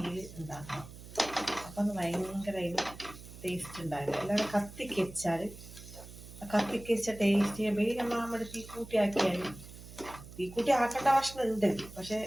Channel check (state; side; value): noise; right; hum, 16 dB below the sound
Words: ഉണ്ടാക്കണം. അപ്പം അത് ഭയങ്കര ടേസ്റ്റ് ഉണ്ടാവില്ല. അല്ലാതെ കത്തിക്കച്ച ടേസ്റ്റ് നമ്മൾ തീക്കൂട്ടി ആക്കിയാൽ, തീക്കൂട്ടി ആക്കേണ്ട ഭക്ഷണം ഉണ്ട്, പക്ഷെ